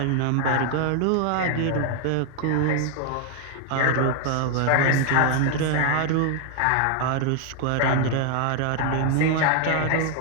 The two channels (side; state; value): both; different; correlation 0.00